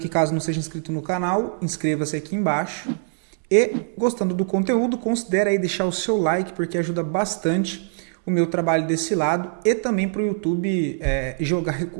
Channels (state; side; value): silent; left; digital silence